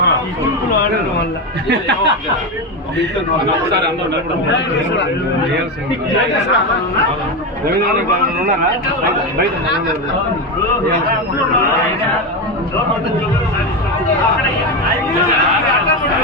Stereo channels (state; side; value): normal; both; correlation 0.14